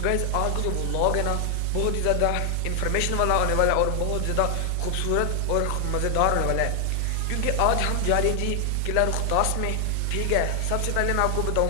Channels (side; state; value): both; different; correlation 0.00